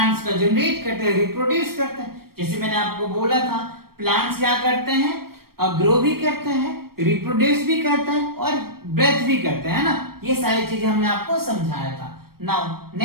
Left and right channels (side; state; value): left; late; 0.94 ms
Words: का जनरेट करते हैं, रिप्रोड्यूस करते हैं। जैसे मैंने आपको बोला था प्लांट्स क्या करते हैं, ग्रो भी करते हैं, रिप्रोड्यूस भी करते हैं और ब्रेथ भी करते हैं ना, ये सारी चीजें हमने आपको समझाया था। नाउ